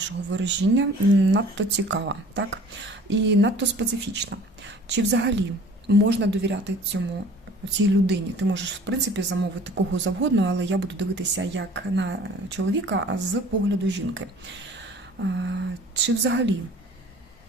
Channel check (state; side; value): normal; both; correlation 0.48